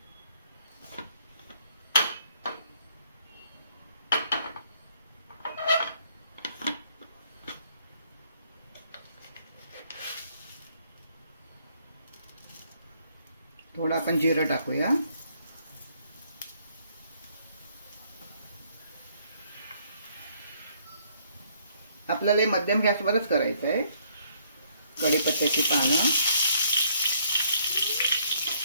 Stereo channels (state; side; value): inverted; both; correlation -0.66